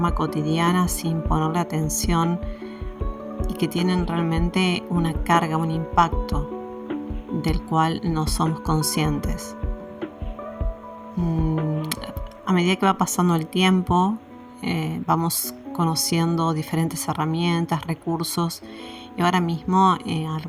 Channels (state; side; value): identical; both; correlation 1.00